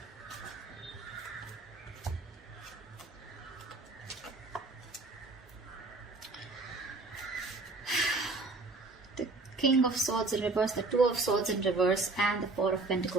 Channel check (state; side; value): quieter; left; 3.4 dB